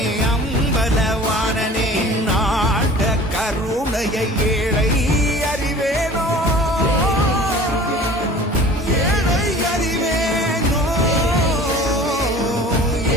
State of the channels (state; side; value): normal; both; correlation 0.44